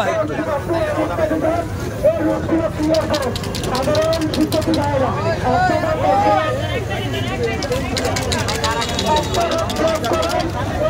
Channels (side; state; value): both; identical; correlation 1.00